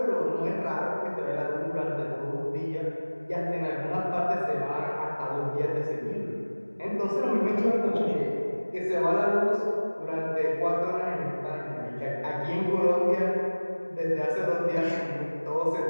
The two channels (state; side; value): inverted; both; correlation -1.00